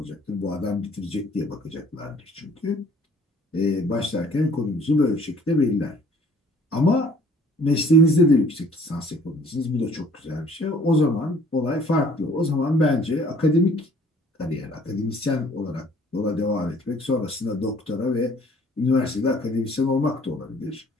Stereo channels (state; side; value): normal; both; correlation 0.56